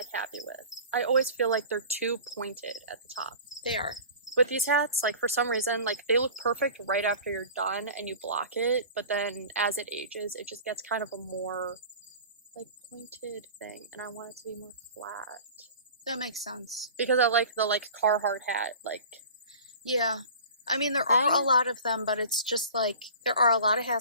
happy with. I always feel like they're too pointed at the top. They are. With these hats, like for some reason, like they look perfect right after you're done and you block it, but then as it ages, it just gets kind of a more like pointed thing, and I want it to be more flat. That makes sense. Because I like the like Carhartt hat, like. Yeah. I mean, there are a lot of them, but it's just like, there are a lot of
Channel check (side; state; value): both; inverted; correlation -0.40